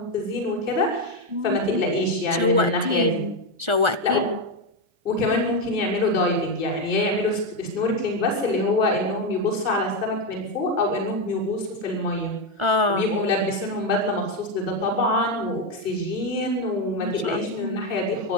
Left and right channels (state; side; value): late; left; 1.4 ms